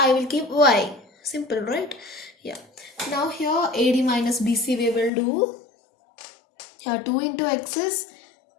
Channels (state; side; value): drops out; right; at 5.1 s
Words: will keep y. Simple, right? Yeah. Now here AD minus BC we will do. Here 2 into x is